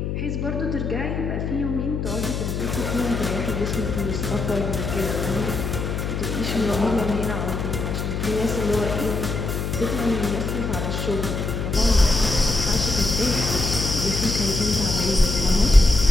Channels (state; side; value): noise; left; hum, 2 dB below the sound